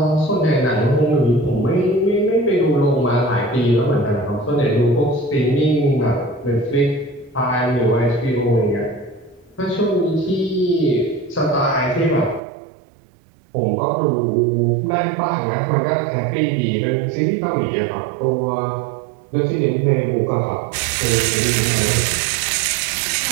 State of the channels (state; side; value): drops out; left; at 12.4 s